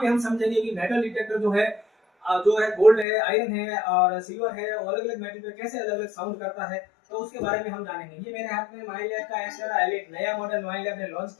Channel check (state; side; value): drops out; right; at 3.1 s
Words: हम समझेंगे कि मेटल डिटेक्टर जो है गोल्ड है, आयरन है और सिल्वर है और अलग अलग मेटल पे कैसे अलग अलग साउंड करता है, तो उसके बारे में हम जानेंगे। ये मेरे हाथ में माइलैब का एस्टेरा एलिट नया मॉडल माइलैब ने लॉन्च